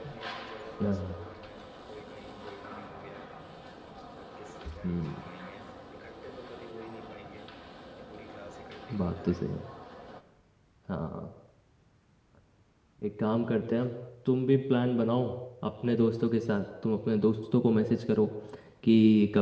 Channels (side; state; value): both; identical; correlation 1.00